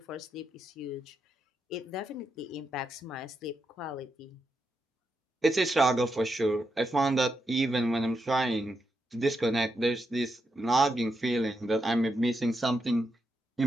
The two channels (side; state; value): both; normal; correlation 0.84